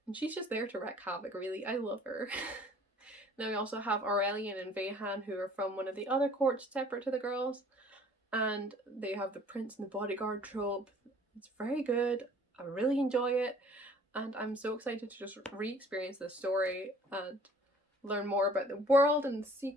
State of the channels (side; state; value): both; normal; correlation 0.53